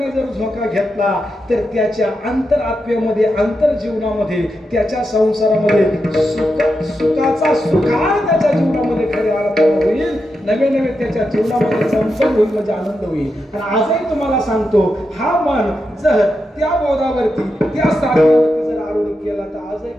जर झोका घेतला तर त्याच्या अंतरात्म्यामध्ये अंतर जीवनामध्ये त्याच्या संसारामध्ये सुखाचा सुखार त्याच्या जीवनामध्ये खऱ्या अर्थाने होईल. नवे नवे त्याच्या जीवनामध्ये चमचम होईल, म्हणजे आनंद होईल. आणि आजही तुम्हाला सांगतो, हा मन जर त्या बोधावरती त्या साधनावरती जर आरूढ केला तर आजही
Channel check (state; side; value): normal; both; correlation 0.86